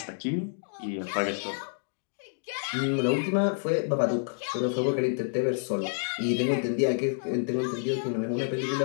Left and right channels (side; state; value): right; silent; digital silence